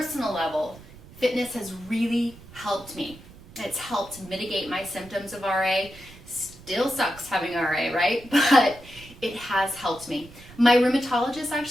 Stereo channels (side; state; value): right; noise; rumble, 20 dB below the sound